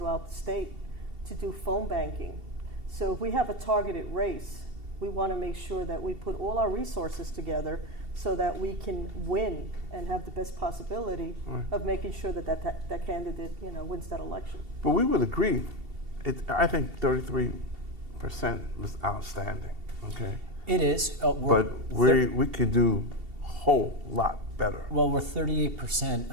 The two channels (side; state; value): left; late; 2.7 ms